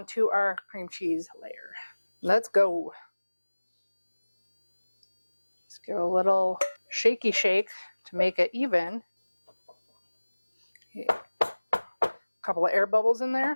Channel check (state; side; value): inverted; both; correlation -1.00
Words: our cream cheese layer. Let's go. Let's give a little shaky shake to make it even. A couple of air bubbles in